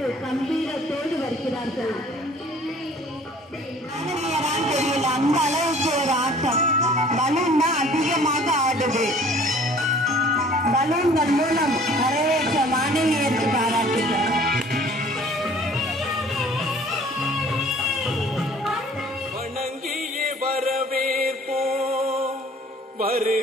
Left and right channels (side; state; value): both; normal; correlation 0.52